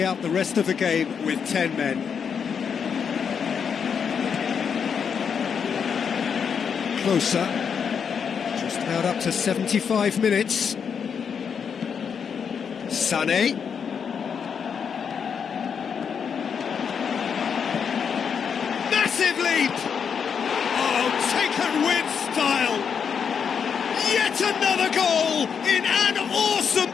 out the rest of the game with 10 men. Closer. Just about up to 75 minutes. Sané. Massive leap! Oh, taken with style! Yet another goal in an awesome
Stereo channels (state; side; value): quieter; right; 6.9 dB